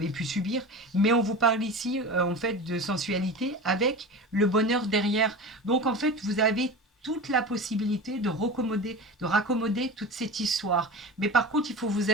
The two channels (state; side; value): normal; both; correlation 0.30